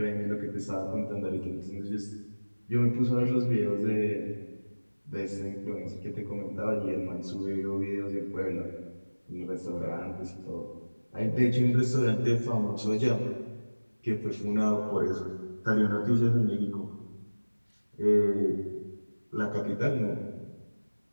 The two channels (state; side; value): inverted; both; correlation -1.00